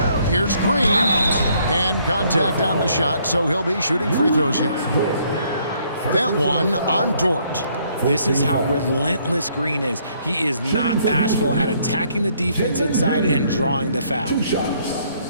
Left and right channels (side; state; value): both; inverted; correlation -0.67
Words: Here's Green. And contact on the shot, so he'll be shooting free throws here. That one on Dort. This is how relentless Green is. He is not bashful at attacking the defense inside and drawing the foul. 2 shots.